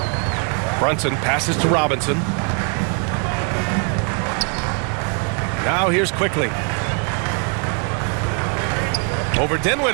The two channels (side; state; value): left; quieter; 38.7 dB